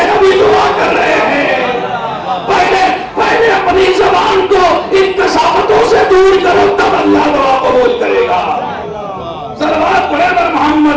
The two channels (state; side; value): identical; both; correlation 1.00